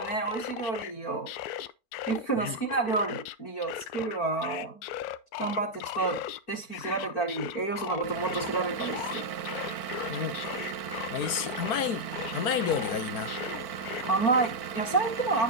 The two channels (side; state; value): right; late; 4.4 ms